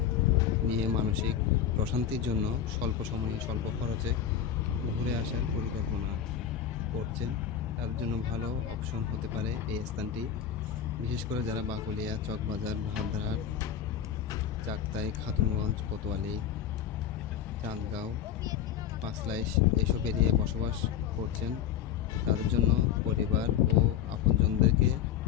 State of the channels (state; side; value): quieter; right; 9.2 dB